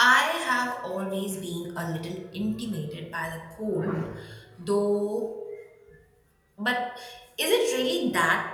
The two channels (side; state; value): both; identical; correlation 1.00